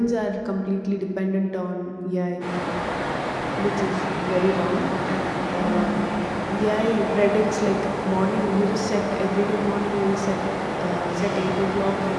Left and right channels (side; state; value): both; identical; correlation 1.00